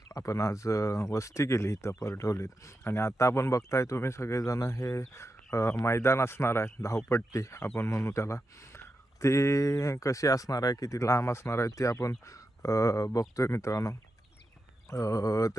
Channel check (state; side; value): normal; both; correlation 0.89